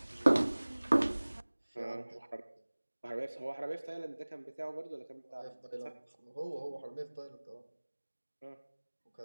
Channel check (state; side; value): inverted; both; correlation -1.00